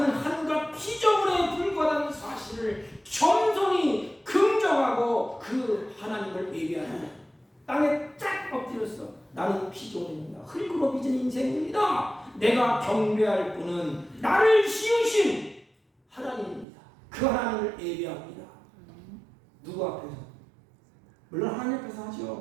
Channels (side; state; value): left; drops out; at 16.7 s